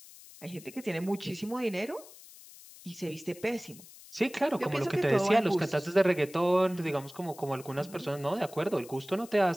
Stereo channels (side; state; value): left; noise; hiss, 19 dB below the sound